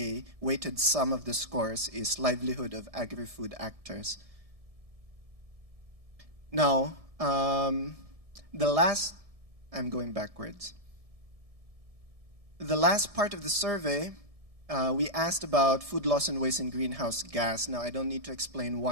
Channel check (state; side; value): late; left; 1.7 ms